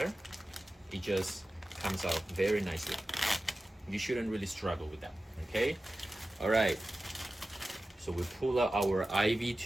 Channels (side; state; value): both; normal; correlation 0.95